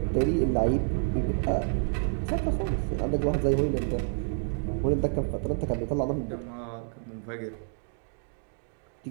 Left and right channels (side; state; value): left; silent; 59 dB below the other